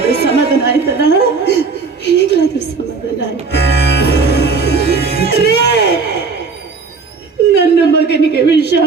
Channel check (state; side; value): quieter; left; 4.6 dB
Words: ಸಮಾಧಾನ ಆಯ್ತಲ್ಲ. ಈಗಲಾದ್ರೂ ಸಮಾಧಾನ ಆಯ್ತು. ನನ್ನ ಮಗನಿಗೆ ವಿಷ